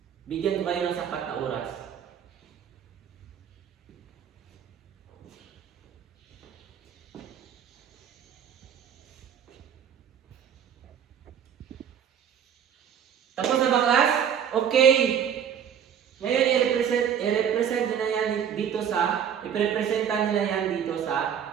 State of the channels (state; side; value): quieter; left; 8.5 dB